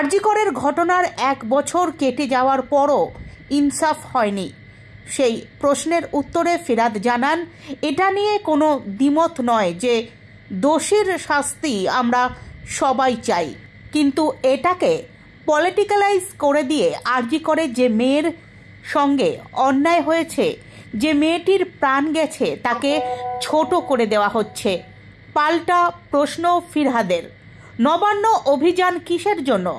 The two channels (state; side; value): identical; both; correlation 1.00